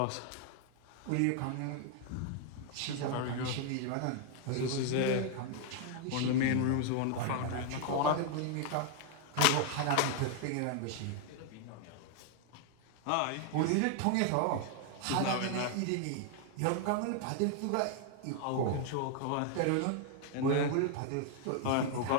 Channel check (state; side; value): different; both; correlation 0.00